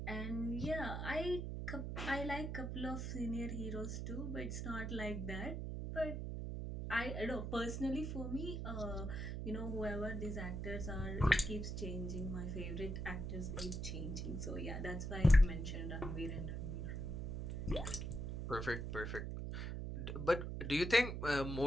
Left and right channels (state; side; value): noise; right; hum, 3 dB below the sound